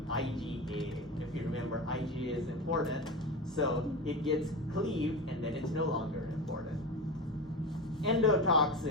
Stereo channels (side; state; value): both; normal; correlation 0.24